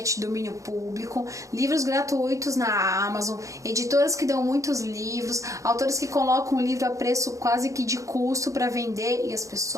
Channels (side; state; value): left; late; 0.15 ms